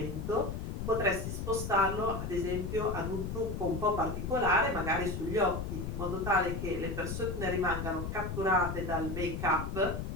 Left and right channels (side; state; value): left; noise; rumble, 4 dB below the sound